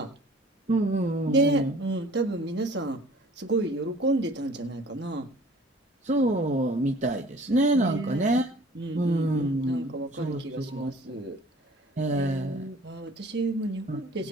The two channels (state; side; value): normal; both; correlation 0.50